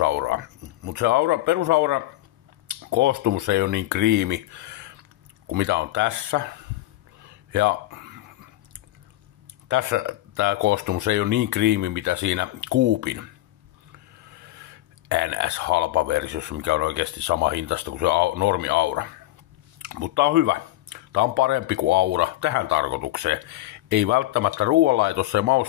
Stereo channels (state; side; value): quieter; right; 15.9 dB